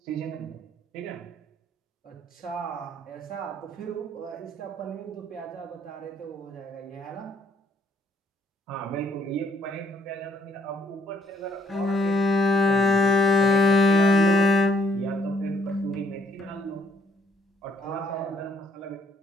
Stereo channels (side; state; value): both; normal; correlation 0.66